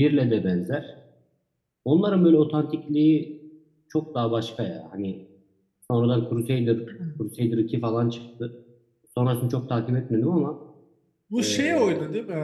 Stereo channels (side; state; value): both; identical; correlation 1.00